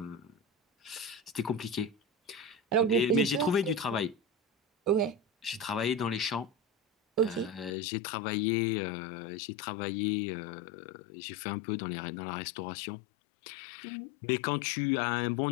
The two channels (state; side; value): drops out; right; at 7.7 s